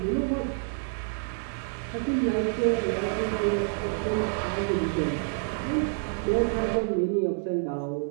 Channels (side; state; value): left; silent; 59 dB below the other